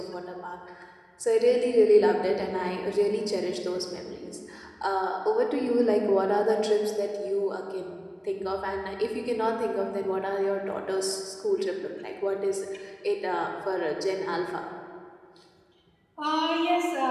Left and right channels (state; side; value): identical; both; correlation 1.00